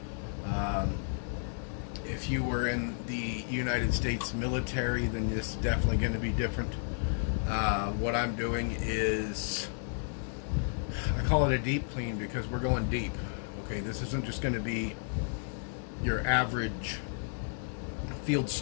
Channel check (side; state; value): right; silent; digital silence